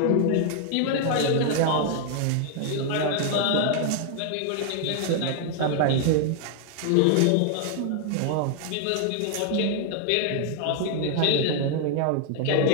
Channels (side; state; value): both; different; correlation 0.00